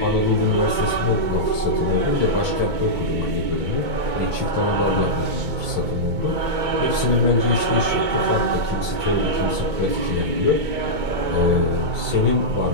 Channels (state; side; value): late; left; 2.2 ms